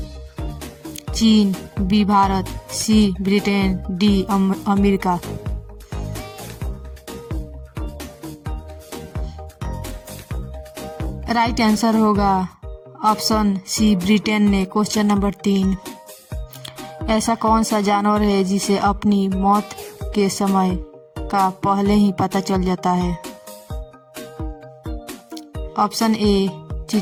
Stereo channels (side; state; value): both; identical; correlation 1.00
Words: चीन, B Bharat, C Britain, D America. Right answer होगा ऑप्शन सी ब्रिटेन ने। क्वेश्चन नंबर 3, ऐसा कौन सा जानवर है जिसे अपनी मौत के समय का पहले ही पता चल जाता है? ऑप्शन ए